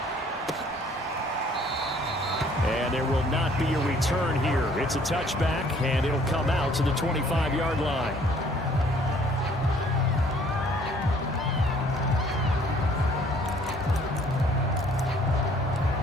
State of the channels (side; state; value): both; normal; correlation 0.59